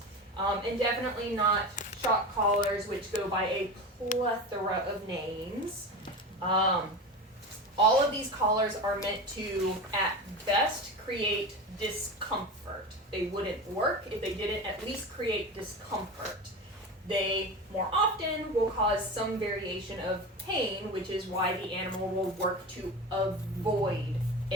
And definitely not shock collars, which go by a plethora of names. All of these collars are meant to, at best, create discomfort. They wouldn't work if they didn't at least create discomfort. They more often will cause some variation of pain, which is why the animal will work to avoid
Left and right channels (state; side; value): normal; both; correlation 0.27